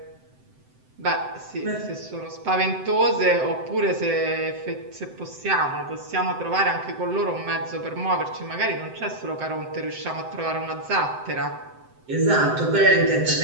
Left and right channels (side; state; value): left; late; 7.8 ms